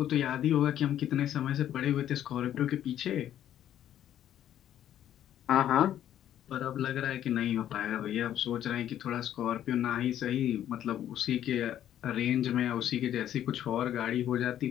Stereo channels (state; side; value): quieter; right; 11.2 dB